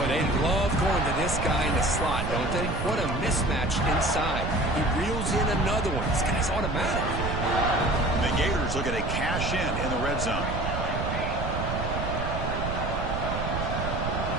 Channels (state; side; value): noise; right; rumble, 3 dB below the sound